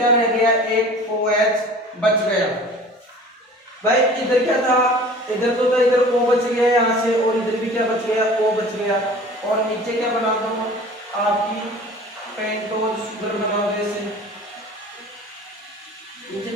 रह गया, एक OH बच गया। भाई इधर क्या था, इधर तो था, इधर O बच गया यहाँ से, और इधर भी क्या बच गया, O बच गया। और नीचे क्या बना दो, आपकी पेंटोज शुगर बना दो ऐसे,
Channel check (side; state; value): both; normal; correlation 0.44